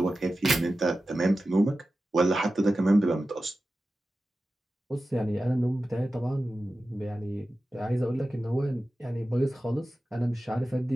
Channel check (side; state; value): both; normal; correlation 0.94